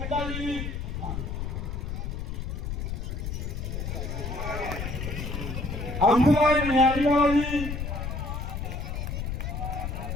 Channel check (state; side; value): noise; left; rumble, 4 dB below the sound